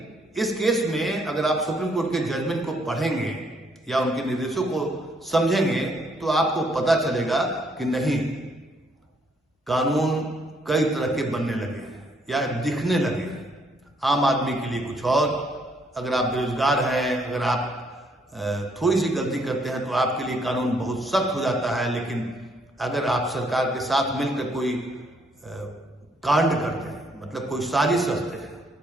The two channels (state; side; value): normal; both; correlation 0.69